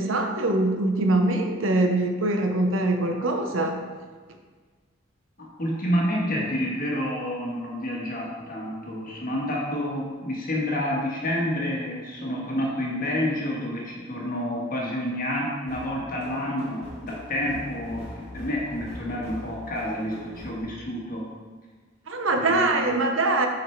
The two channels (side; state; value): both; normal; correlation 0.42